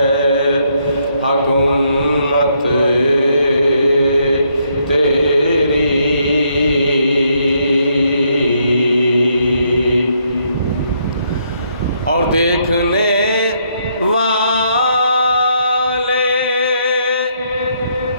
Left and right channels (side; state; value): both; inverted; correlation -0.73